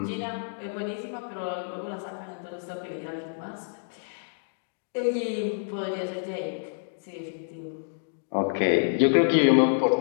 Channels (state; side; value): silent; right; digital silence